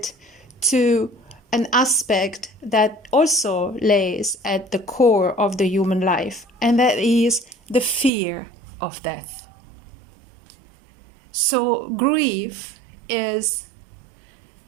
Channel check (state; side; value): drops out; left; at 8.1 s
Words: to an aspect that also lays at the core of the human life, and that is the fear of death. So grief is